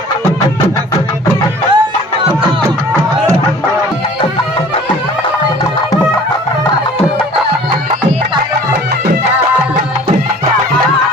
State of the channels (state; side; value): normal; both; correlation 0.48